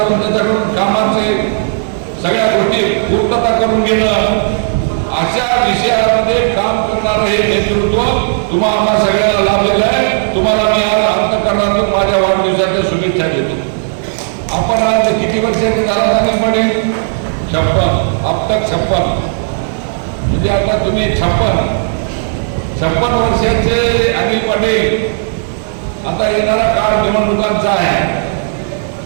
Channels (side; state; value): left; silent; digital silence